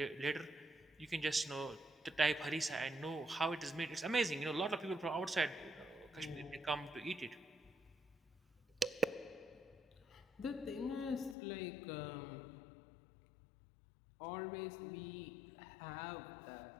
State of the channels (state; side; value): drops out; right; at 11.4 s